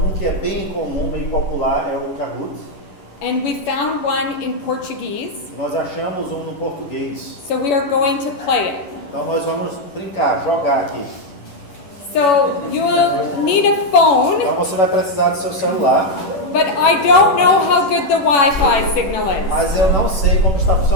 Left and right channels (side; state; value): right; late; 11 ms